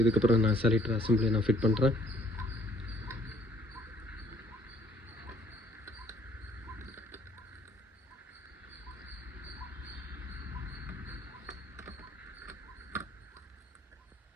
இதுக்கப்புறம் நான் செலக்டர் அசம்பிளி நான் ஃபிட் பண்ணுறேன்.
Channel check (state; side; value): normal; both; correlation 0.61